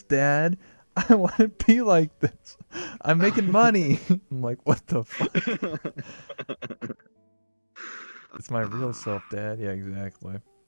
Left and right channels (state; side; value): inverted; both; correlation -1.00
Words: Dad. I want to be like this. I'm making money." I'm like, "What the fuck? It's my real self, Dad." Yeah, exactly.